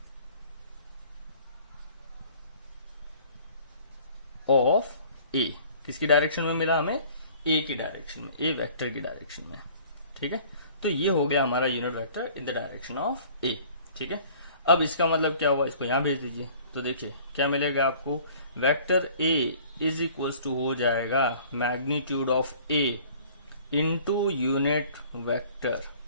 ऑफ ए। किसकी डायरेक्शन में मिला हमें, ए की डायरेक्शन में, ए वेक्टर की डायरेक्शन में। ठीक है, तो ये हो गया हमारा unit vector in the direction of A. ठीक है, अब इसका मतलब क्या हुआ, इसको यहां भेज दीजिए तो देखिए क्या मिलेगा आपको, vector A is equals to हो जाएगा magnitude of A into unit vector,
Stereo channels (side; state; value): both; inverted; correlation -0.51